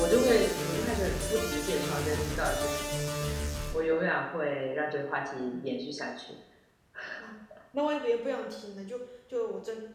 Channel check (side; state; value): both; identical; correlation 1.00